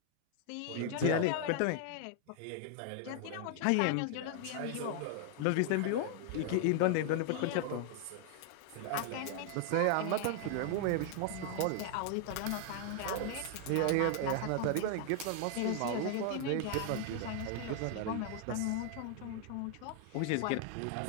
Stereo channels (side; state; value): both; different; correlation 0.00